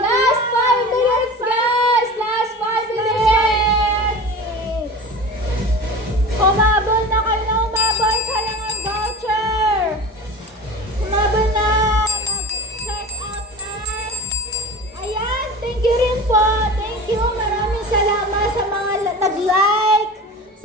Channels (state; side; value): normal; both; correlation 0.34